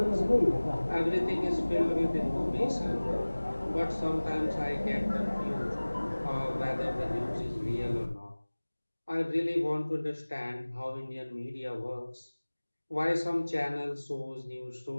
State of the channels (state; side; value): inverted; both; correlation -1.00